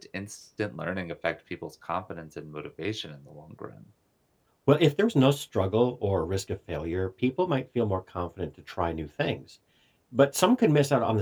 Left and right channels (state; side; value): identical; both; correlation 1.00